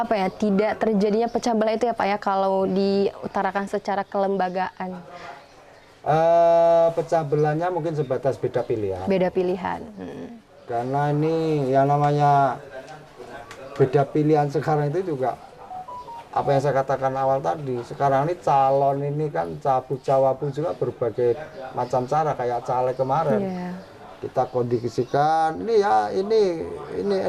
ya, tidak terjadinya pecah belah itu ya Pak ya, kalau diutarakan secara kelembagaan. Pecah belahnya mungkin sebatas beda pilihan. Beda pilihan. Karena ini yang namanya beda pilihan sekarang itu juga apa yang saya katakan awal tadi. Sekarang ini calon ini kan cawapu juga berbagai macam cara, kayak caleg kemarin. Kita kondisikan ini ya ini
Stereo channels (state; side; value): identical; both; correlation 1.00